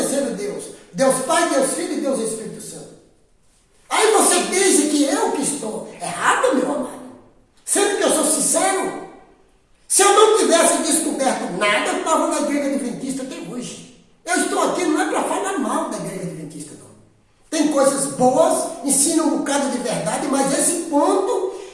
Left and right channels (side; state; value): both; identical; correlation 1.00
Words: Deus? Deus Pai, Deus Filho e Deus Espírito Santo. Aí você diz que eu que estou errado, meu amado. Sendo que eu sou sincero. Se eu não tivesse descoberto nada, eu estava na igreja adventista até hoje. Eu estou aqui não é para falar mal da igreja adventista, não. Tem coisas boas pessoas, ensinam um bocado de verdade, mas esse ponto